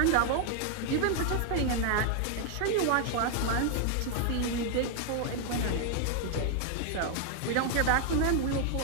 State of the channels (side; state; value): both; different; correlation 0.00